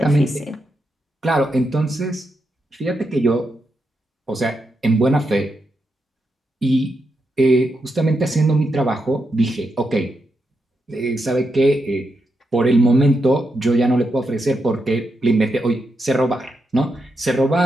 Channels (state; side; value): normal; both; correlation 0.84